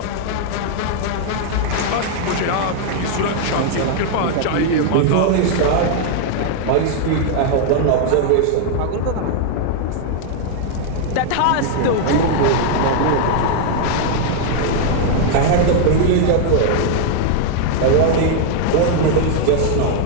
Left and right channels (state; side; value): different; both; correlation 0.00